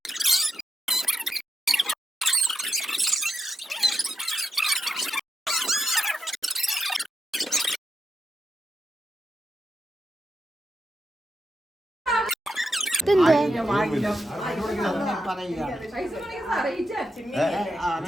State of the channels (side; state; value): both; normal; correlation 0.86